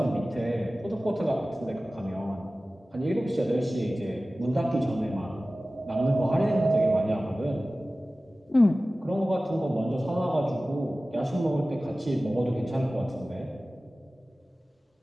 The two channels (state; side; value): normal; both; correlation 0.97